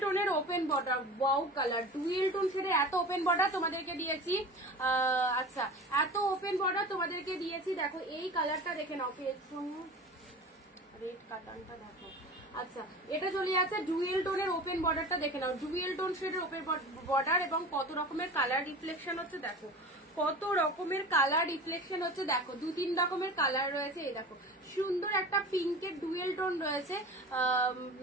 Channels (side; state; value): both; normal; correlation 0.35